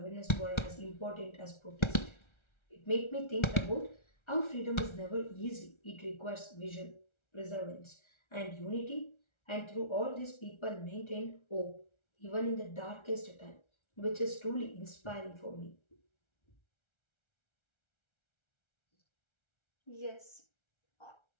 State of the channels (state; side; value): late; right; 1.3 ms